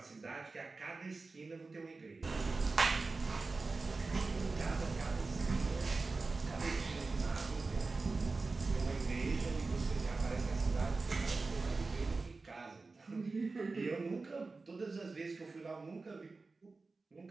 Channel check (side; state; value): left; quieter; 3.8 dB